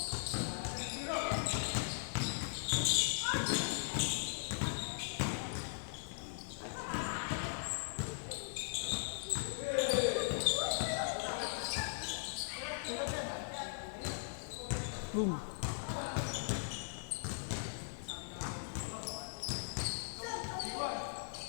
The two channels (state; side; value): silent; right; digital silence